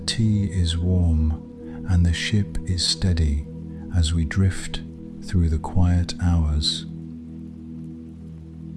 is warm, and the ship is steady as we drift through the quiet hours.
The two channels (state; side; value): identical; both; correlation 1.00